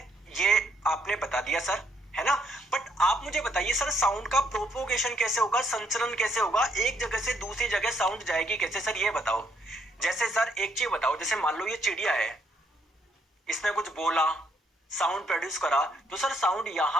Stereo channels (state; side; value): normal; both; correlation 0.71